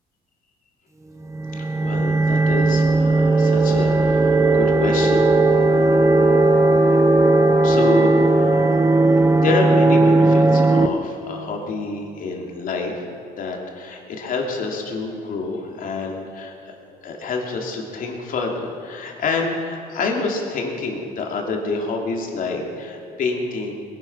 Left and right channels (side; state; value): both; normal; correlation 0.79